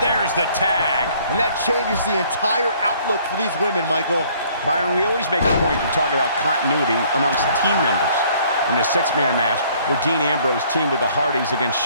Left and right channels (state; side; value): inverted; both; correlation -0.59